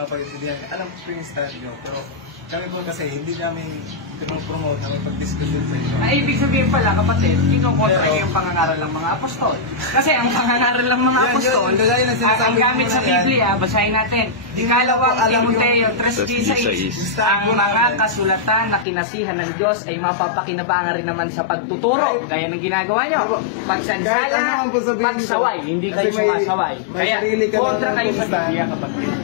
pag-intindihan. Alam ko yung stand nyo, pero kami po kasi hindi namin promote na may pag-discussion sa inyo. Ay, ibig sabihin pala, kapatid, kinukontra niyo yung pangangaral ng mga apostol. Kasi ang pangangaral ng mga apostol, ang gamit sa Biblia, basahin natin. Ikalawang Timoteo 3:16, ang mga kasulatan na kinasihan ng Diyos ay mapapakinabangan rin naman sa pagtuturo. Kaya nang ginagawa nyo, pagsansala, pagsaway, hindi kayo sumasaway. Kaya kontra kayo sa Biblia, kapatid.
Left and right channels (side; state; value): right; drops out; at 18.9 s